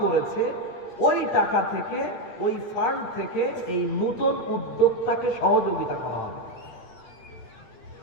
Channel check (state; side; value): late; right; 8.4 ms